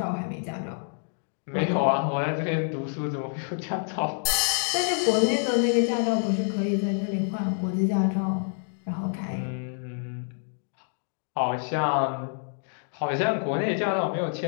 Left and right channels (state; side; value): silent; right; 60 dB below the other